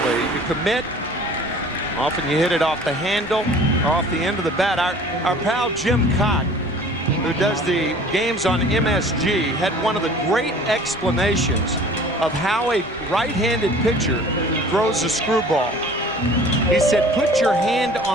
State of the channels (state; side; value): normal; both; correlation 0.47